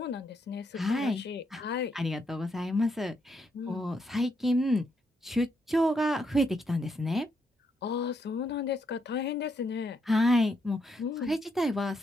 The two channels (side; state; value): both; normal; correlation 0.78